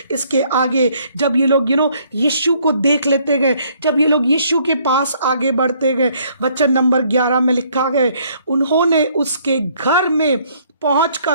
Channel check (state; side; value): inverted; both; correlation -0.64